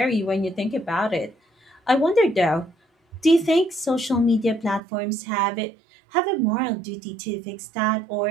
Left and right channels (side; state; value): left; drops out; at 4.8 s